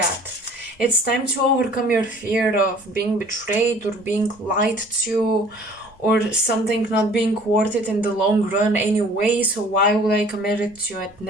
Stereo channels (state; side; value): normal; both; correlation 0.51